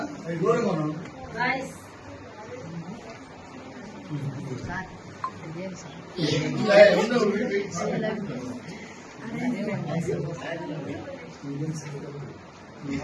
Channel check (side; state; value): both; identical; correlation 1.00